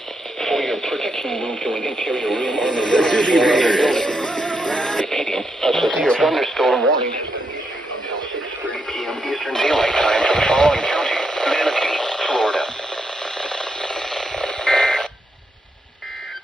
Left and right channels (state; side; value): normal; both; correlation 0.81